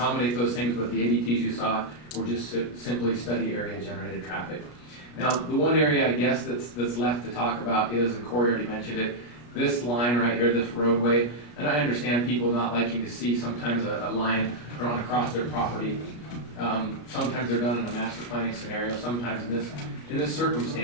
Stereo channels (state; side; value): late; right; 33 ms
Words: those things, but the ADTs you saw were just simply study area generated traffic. Now, the one area I guess that's left to talk about is, and Corey already mentioned it, this line right here, this roadway, and I understand people not liking to see sometimes a line drawn across their property. Sometimes they're done in a master planning scenario, sometimes in this